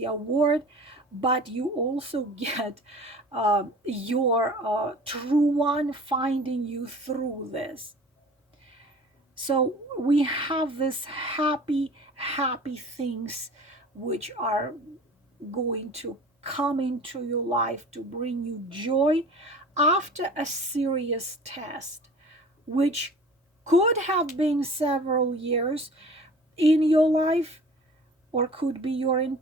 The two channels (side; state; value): both; normal; correlation 0.43